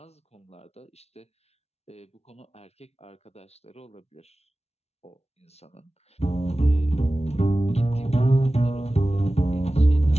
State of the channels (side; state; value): right; late; 0.31 ms